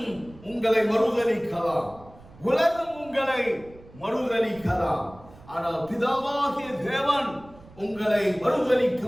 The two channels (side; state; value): right; noise; rumble, 22 dB below the sound